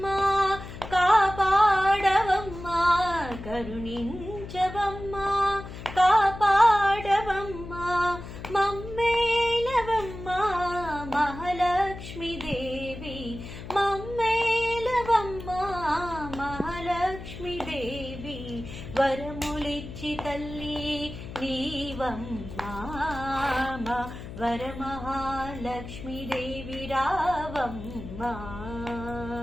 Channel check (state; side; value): noise; left; hum, 11 dB below the sound